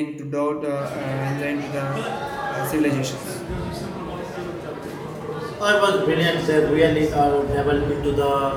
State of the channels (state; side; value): identical; both; correlation 1.00